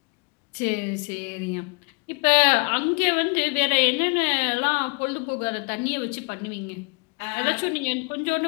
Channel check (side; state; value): right; quieter; 32.2 dB